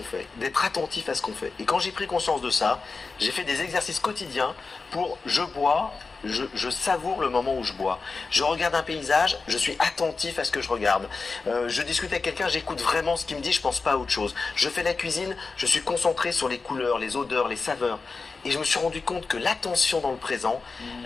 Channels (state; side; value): quieter; right; 4.3 dB